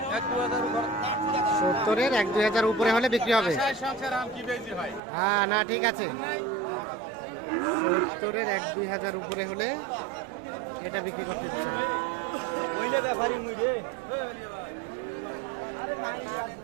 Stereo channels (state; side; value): drops out; left; at 5.0 s